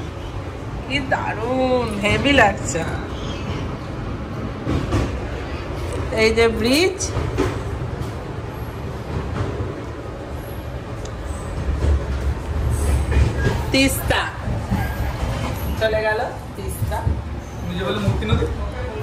কি দারুণ, হেভি লাগছে। এই যে ব্রিজ, তিস্তা চলে গেল, তিস্তা। নিজে বলে মূর্তি নদী,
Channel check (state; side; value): identical; both; correlation 1.00